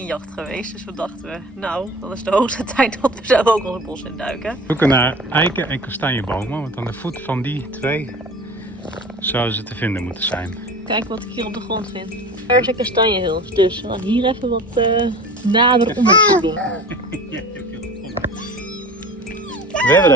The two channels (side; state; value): both; normal; correlation 0.38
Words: geweest. Dus we dachten, nou, dan is de hoogste tijd dat we zelf ook ons bos induiken. We zoeken naar eiken en kastanjebomen, want aan de voet van die 2 zouden ze te vinden moeten zijn. Kijk wat ik hier op de grond vind. Er is een kastanjehils, dus we gaan hier even wat nader onderzoek doen. We hebben